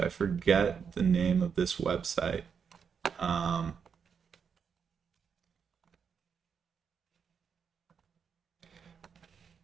forget the name of this website.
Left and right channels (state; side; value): quieter; left; 6.7 dB